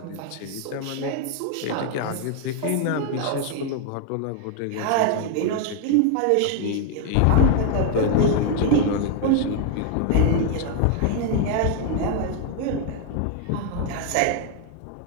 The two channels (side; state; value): both; different; correlation 0.00